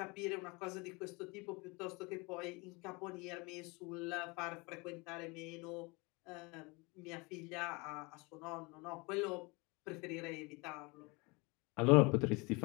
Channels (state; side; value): quieter; right; 27.1 dB